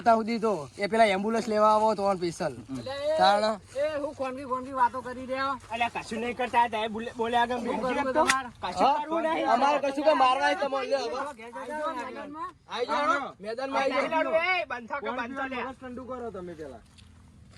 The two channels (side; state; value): both; identical; correlation 1.00